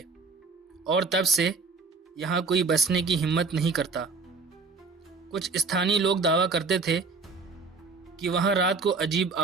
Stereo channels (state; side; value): quieter; left; 4.3 dB